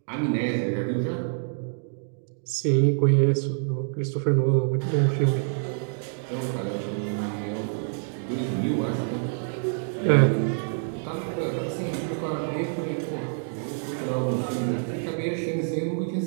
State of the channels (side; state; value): left; silent; digital silence